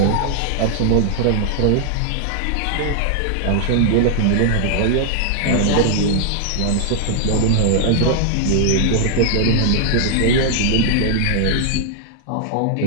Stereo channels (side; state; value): both; different; correlation -0.01